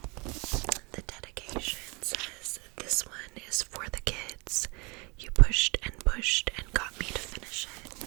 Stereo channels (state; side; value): quieter; left; 29.1 dB